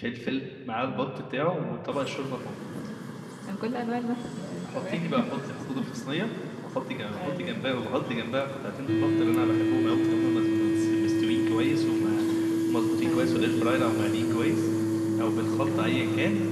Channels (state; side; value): identical; both; correlation 1.00